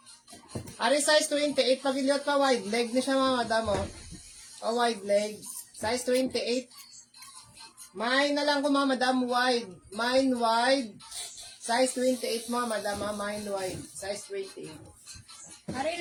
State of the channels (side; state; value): both; identical; correlation 1.00